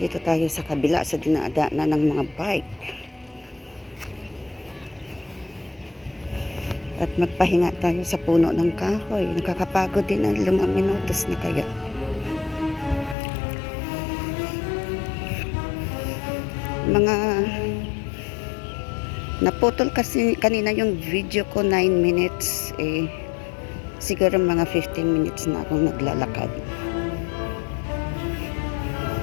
tayo sa kabila sa dinadaanan ng mga bike. At magpahinga tayo sa puno ng kahoy. Nakakapagod din ang 5 minutos na kaya. Mga naputol kasi kanina yung video ko 9 minutes. Siguro mga 15 minutes na akong naglalakad.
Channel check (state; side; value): drops out; right; at 13.2 s